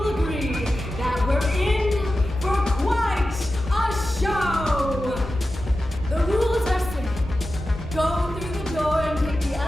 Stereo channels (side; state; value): both; normal; correlation 0.93